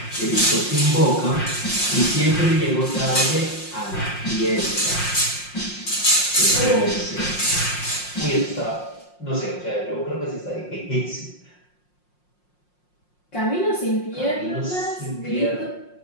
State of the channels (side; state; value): right; late; 5.6 ms